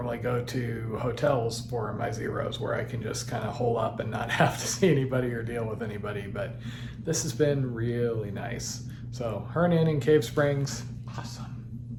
go to hotels for my zeros where I can just kind of hole up and not have to see anybody or deal with anybody, but this has been really nice. So Hernan in Cave Springs, awesome.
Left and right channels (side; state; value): both; identical; correlation 1.00